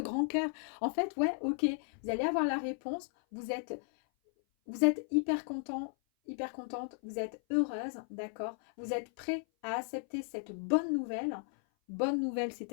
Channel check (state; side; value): silent; right; 54 dB below the other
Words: cœur. En fait, ouais, ok. Vous allez avoir la réponse. Vous êtes hyper content, hyper contente. Vous êtes heureuse, d'accord? Vous êtes prêt à accepter cette bonne nouvelle. Bonne nouvelle, c'est